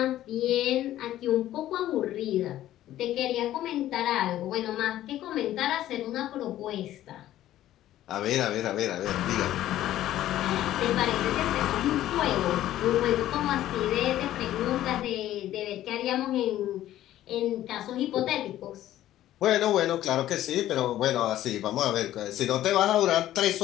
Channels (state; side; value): quieter; right; 13.4 dB